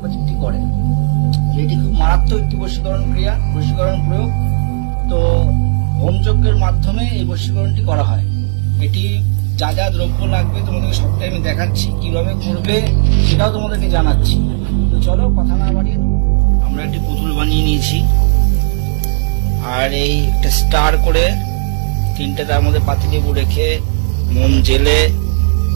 ম্যাজিকটি করে। এটি খুব মারাত্মক একটি বশীকরণ ক্রিয়া, বশীকরণ প্রয়োগ। তো হোমযজ্ঞের মাধ্যমে এই বশীকরণটি করা হয়। এটি যা যা দ্রব্য লাগবে তোমাদেরকে সবটাই আমি দেখাচ্ছি, কিভাবে করবে সেটাও তোমাদেরকে জানাচ্ছি। তো চলো কথা না বাড়িয়ে, আমরা একটি পুতুল বানিয়ে নিয়েছি, আর এই একটা স্টার করে তিনটে তার মধ্যে পাতিলেবু রেখে মোম জেলে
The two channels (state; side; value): silent; left; 71 dB below the other